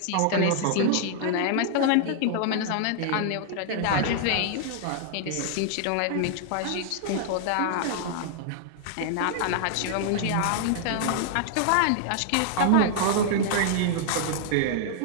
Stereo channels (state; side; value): different; both; correlation -0.01